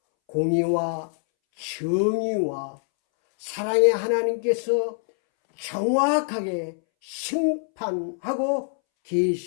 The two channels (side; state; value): right; silent; 62 dB below the other